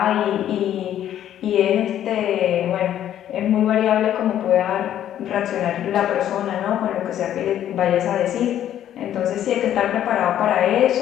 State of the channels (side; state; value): right; quieter; 11.1 dB